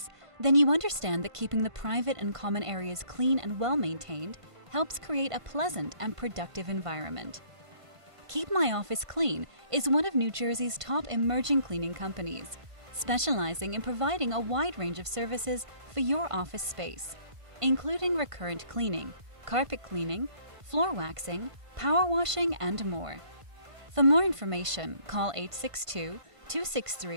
then you understand that keeping the private and common areas clean and well-maintained helps create a pleasant and productive environment. Keep My Office Clean is one of New Jersey's top emerging cleaning companies, specializing in providing a wide range of services for your office space, including recurrent cleaning, carpet cleaning, floor waxing, power washing, and more. For more information, call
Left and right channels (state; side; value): late; left; 1.5 ms